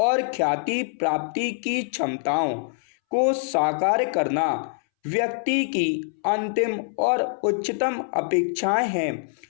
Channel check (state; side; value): silent; right; 62 dB below the other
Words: ख्याति प्राप्ति की क्षमताओं को साकार करना व्यक्ति की अंतिम और उच्चतम अपेक्षाएं हैं।